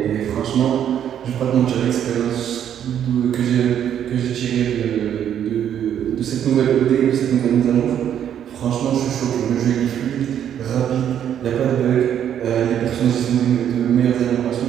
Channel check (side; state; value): left; quieter; 9.6 dB